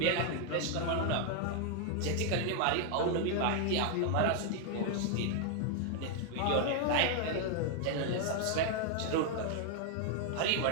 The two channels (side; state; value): both; different; correlation 0.00